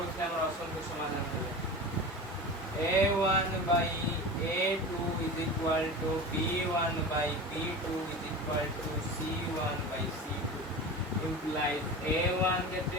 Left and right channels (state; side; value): normal; both; correlation 0.30